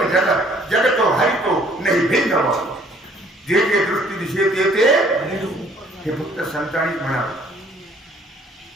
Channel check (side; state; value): both; normal; correlation 0.58